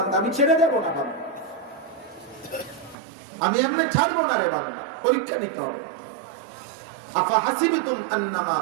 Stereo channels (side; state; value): left; drops out; at 3.0 s